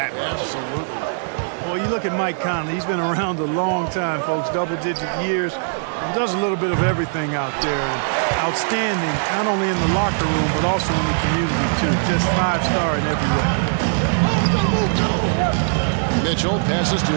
much. Absolutely. Well, you look at Mike Conley. He's been around a long time, folks, double-digit years. Does a little bit of everything out there. And outstanding, not only in the locker room, but also in the community, too. Just 5-star in every way. Mitchell passes to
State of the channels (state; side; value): silent; left; 55 dB below the other